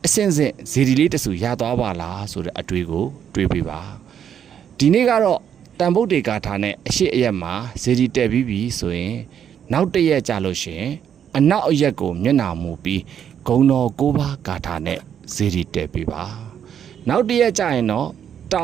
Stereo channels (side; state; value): left; quieter; 8.8 dB